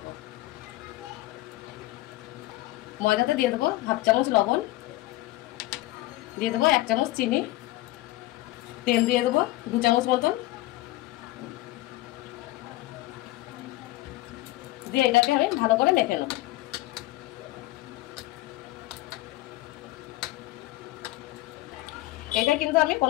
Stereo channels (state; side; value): quieter; right; 17.8 dB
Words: ময়দাতে দিয়ে দেবো হাফ চামচ লবণ, দিয়ে দেবো 1 চামচ চিনি, তেল দিয়ে দেবো 2 চামচ মতন, দিয়ে এটাকে আমি ভালো করে মেখে নেব। এটা কিন্তু আমি